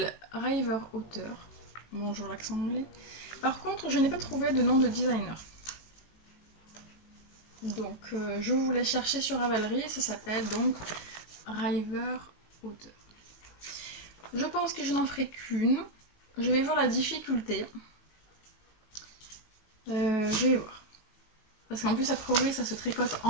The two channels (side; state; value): right; late; 18 ms